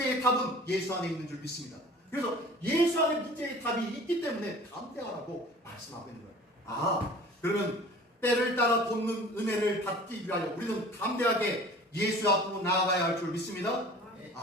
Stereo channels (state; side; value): normal; both; correlation 0.44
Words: 답은 예수 안에 있는 줄 믿습니다. 그래서 예수 안에 문제의 답이 있기 때문에 담대하라고 말씀하고 있는 거예요. 그러면 때를 따라 돕는 은혜를 받기 위하여 우리는 담대하게 예수 앞으로 나아가야 할 줄 믿습니다.